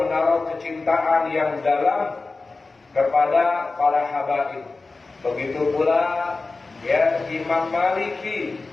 menaruh kecintaan yang dalam kepada para habaib. Begitu pula ya Imam Maliki,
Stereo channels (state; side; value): quieter; right; 3.7 dB